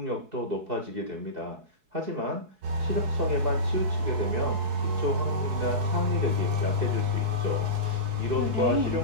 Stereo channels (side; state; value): left; late; 4.7 ms